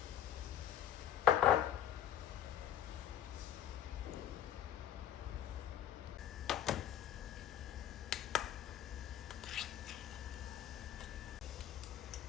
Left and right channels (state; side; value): quieter; right; 10.9 dB